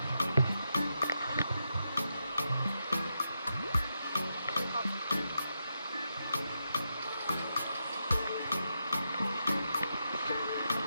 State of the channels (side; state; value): both; inverted; correlation -0.84